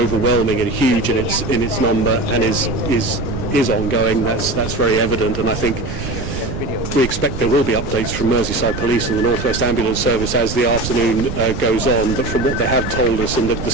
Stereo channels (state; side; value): noise; right; rumble, 6 dB below the sound